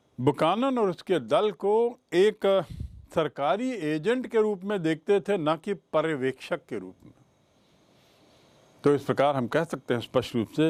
बुकानन और उसके दल को एक सरकारी एजेंट के रूप में देखते थे, न कि पर्यवेक्षक के रूप में। तो इस प्रकार हम कह सकते हैं स्पष्ट रूप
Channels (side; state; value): both; identical; correlation 1.00